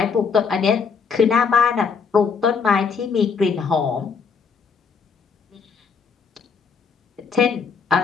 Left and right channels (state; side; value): quieter; right; 5.7 dB